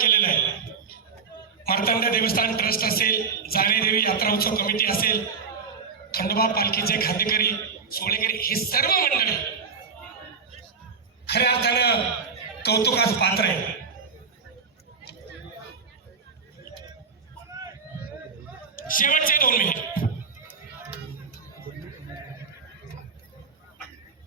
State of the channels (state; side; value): quieter; left; 5.5 dB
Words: आहे. मार्तंड देवस्थान ट्रस्ट असेल, जाणेदेवी यात्रा उत्सव कमिटी असेल, खंडोबा पालखीचे खांदेकरी, सोळेकरी, हे सर्व मंडळी खऱ्या अर्थानं कौतुकास पात्र आहे. शेवटचे 2 मिनिट.